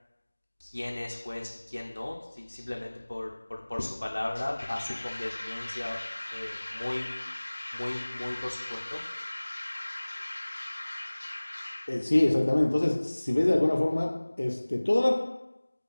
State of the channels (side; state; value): both; inverted; correlation -1.00